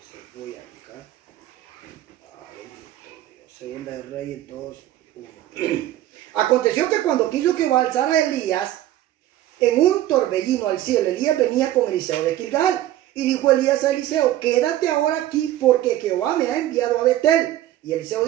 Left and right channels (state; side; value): quieter; left; 13.7 dB